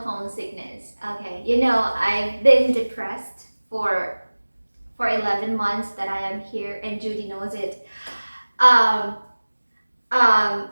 homesickness? Okay, I've been depressed for 11 months that I am here, and Judy knows it. Um,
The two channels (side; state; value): both; inverted; correlation -1.00